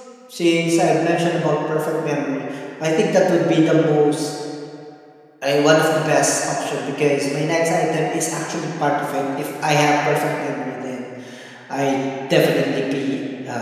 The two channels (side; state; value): both; identical; correlation 1.00